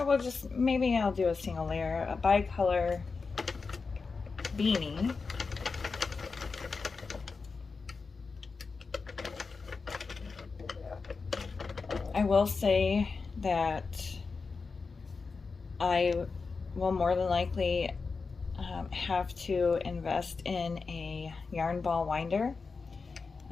maybe I'll do a single layer, a bicolor beanie. I will say that I will more than likely have to invest in a yarn ball winder,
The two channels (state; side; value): quieter; right; 4.6 dB